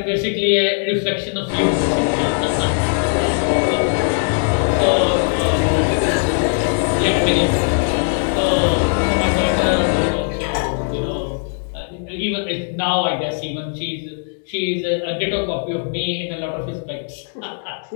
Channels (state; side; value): silent; right; 66 dB below the other